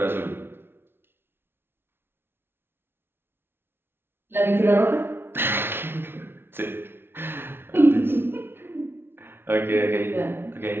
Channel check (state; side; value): late; left; 0.11 ms